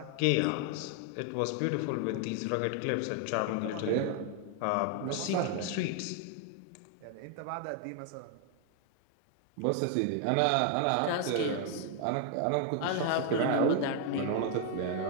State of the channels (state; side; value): different; both; correlation 0.00